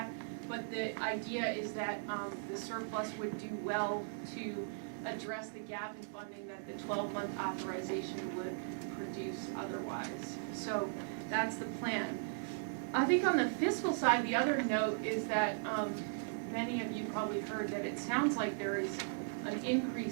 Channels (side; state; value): left; silent; digital silence